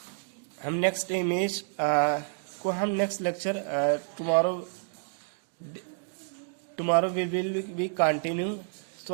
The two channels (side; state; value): left; silent; digital silence